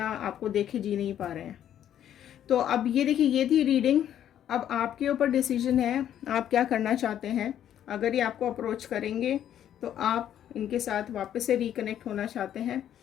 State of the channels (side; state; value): right; quieter; 10.5 dB